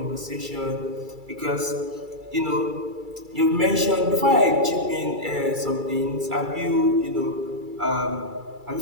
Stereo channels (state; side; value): late; left; 2.3 ms